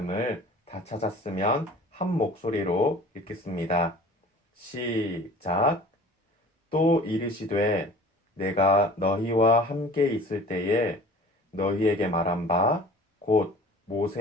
다 찾았으면 한 목소리로 읽겠습니다. 시작. 또 이르시되 내가 너희와 함께 있을 때에 너희에게 말한 바 곧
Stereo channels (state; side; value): normal; both; correlation 0.44